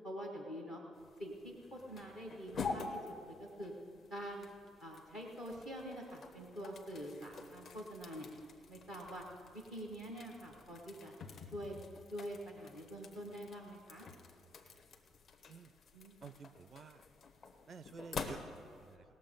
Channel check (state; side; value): normal; both; correlation 0.69